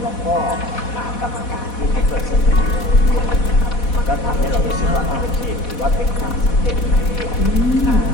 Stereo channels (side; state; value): right; late; 4.1 ms